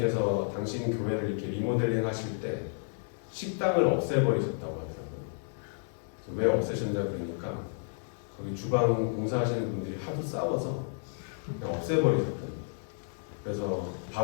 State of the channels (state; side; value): silent; right; digital silence